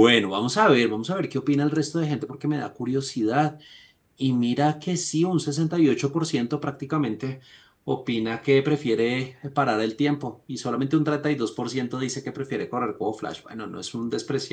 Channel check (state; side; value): identical; both; correlation 1.00